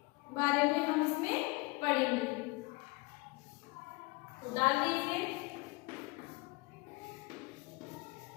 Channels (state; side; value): quieter; right; 24.9 dB